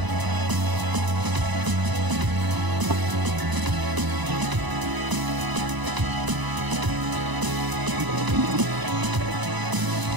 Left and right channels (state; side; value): late; left; 1.0 ms